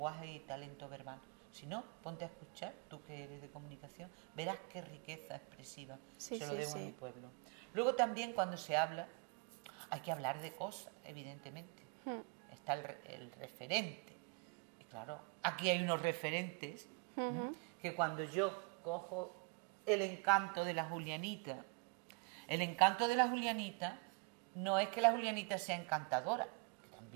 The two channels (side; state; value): left; quieter; 33.4 dB